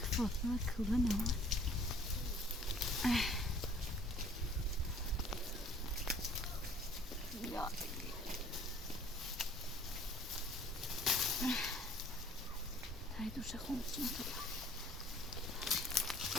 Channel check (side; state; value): both; normal; correlation 0.55